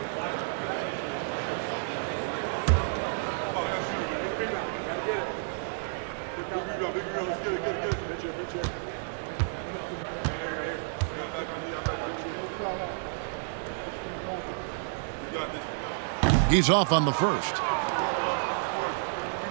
He's off on the first.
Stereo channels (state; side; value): silent; left; digital silence